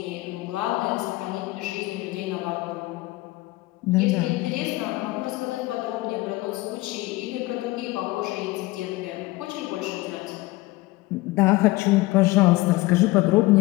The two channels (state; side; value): quieter; right; 20.1 dB